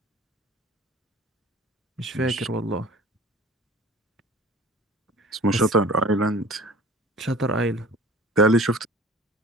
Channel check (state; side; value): normal; both; correlation 0.45